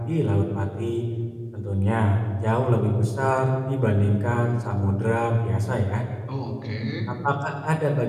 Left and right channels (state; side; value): identical; both; correlation 1.00